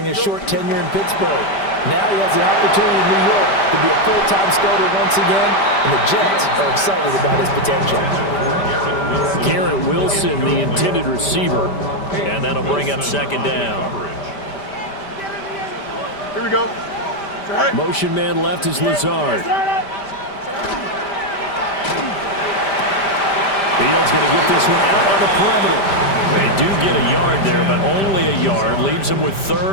his short tenure in Pittsburgh. Now he has the opportunity in New York to be a full-time starter once again, and the Jets are excited about his potential. Garrett Wilson, the intended receiver, and that'll bring up second down. Here we go. Motion man left is Lazard. Fields going to get this one out on the perimeter. They do get a yard there, but only a yard. Leaves them with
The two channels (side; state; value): right; late; 5.1 ms